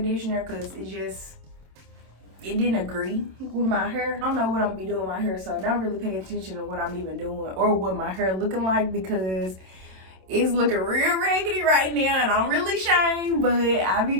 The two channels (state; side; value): late; left; 27 ms